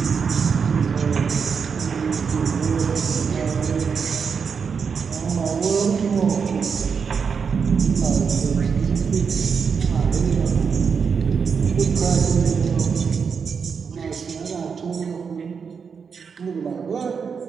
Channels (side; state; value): left; quieter; 6.0 dB